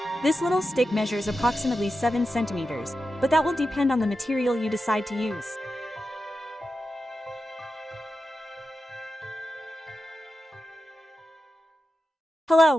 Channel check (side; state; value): both; normal; correlation 0.90